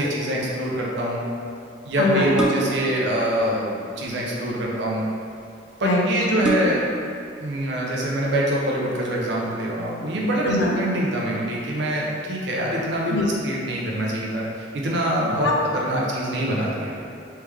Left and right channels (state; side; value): normal; both; correlation 0.39